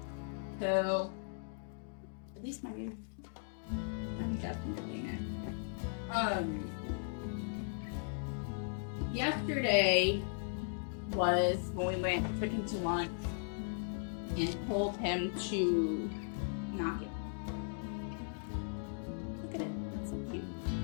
So at least my new Jasmine came in. Yesterday was when we took him to lunch and told him to not give up. Look at it, that's so cute.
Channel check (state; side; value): silent; right; digital silence